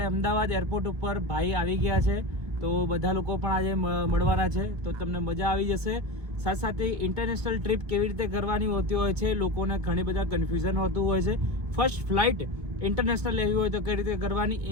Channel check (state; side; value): late; left; 1.7 ms